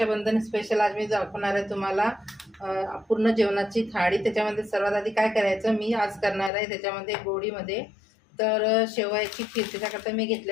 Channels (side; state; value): right; drops out; at 6.5 s